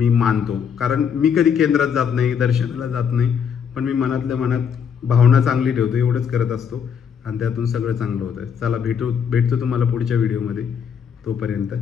मानतो. कारण मी कधी केंद्रात जात नाही, दर्शनाला जात नाही, पण मी मनातल्या मनात भावना चांगली ठेवतो, एवढंच करत असतो आणि त्यातून सगळं चांगलं होतं. चला भेटतो तुम्हाला पुढच्या व्हिडिओमध्ये. तोपर्यंत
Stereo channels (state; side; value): quieter; right; 7.4 dB